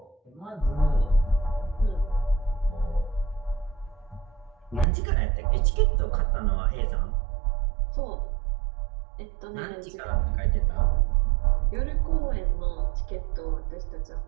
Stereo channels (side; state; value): left; drops out; at 4.9 s